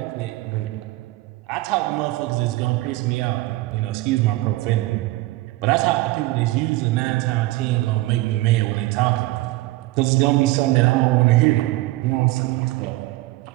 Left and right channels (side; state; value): left; quieter; 19.0 dB